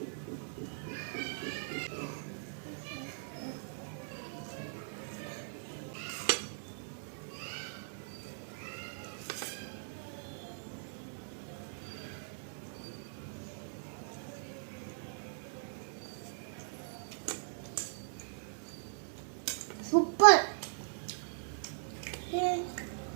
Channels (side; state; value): left; silent; digital silence